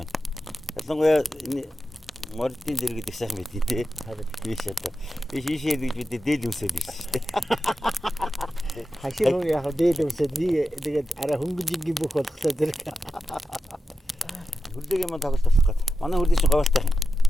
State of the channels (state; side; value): normal; both; correlation 0.91